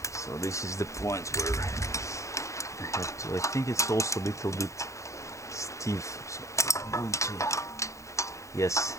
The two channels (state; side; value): late; right; 0.15 ms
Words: so this is the point where I have to. I think it's also a little bit stiff, so I'm going to. Yes,